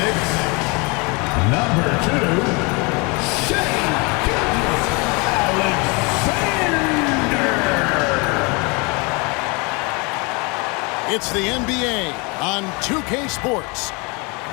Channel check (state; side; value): quieter; right; 29.6 dB